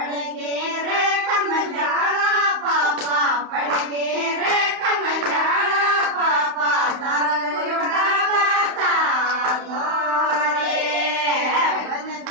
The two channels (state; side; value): late; left; 31 ms